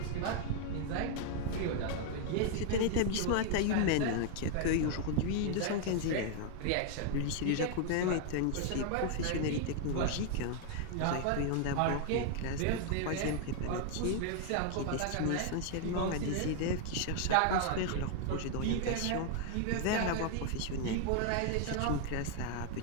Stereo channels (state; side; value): different; both; correlation 0.00